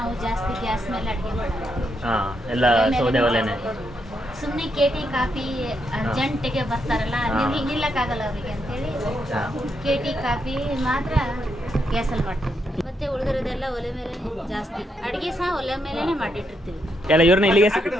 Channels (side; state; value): both; normal; correlation 0.80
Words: ಜಾಸ್ತಿ ಗ್ಯಾಸ್ ಮೇಲೆ ಅಡಿಗೆ ಮಾಡೋದು. ಎಲ್ಲ ಸೌದೆ ಒಲೆನೇ. ಸುಮ್ಮನೆ ಕೇಟಿ ಕಾಫಿ ಅರ್ಜೆಂಟಿಗೆ ಬರ್ತಾರಲ್ಲ, ನಿಲ್ಲಕ್ಕಾಗಲ್ಲ ಅವರಿಗೆ ಅಂತೇಳಿ ಕೇಟಿ ಕಾಫಿ ಮಾತ್ರ ಗ್ಯಾಸಲ್ಲಿ ಮಾಡ್ತೀವಿ. ಮತ್ತೆ ಉಳಿದಿರೋದೆಲ್ಲ ಒಲೆ ಮೇಲೆ ಜಾಸ್ತಿ. ಅಡಿಗೆ ಸಹ ಒಲೆ ಮೇಲೆನೆ ಮಾಡಿಟ್ಟಿರ್ತೀವಿ. ಎಲ್ಲ ಇವ್ರನ್ನ